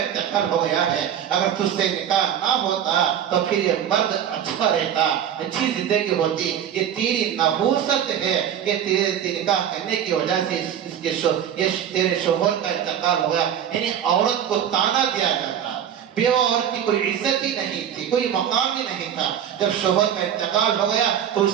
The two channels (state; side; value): quieter; left; 9.4 dB